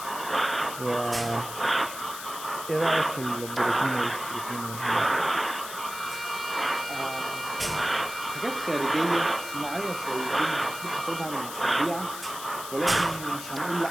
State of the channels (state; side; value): noise; left; hiss, 10 dB below the sound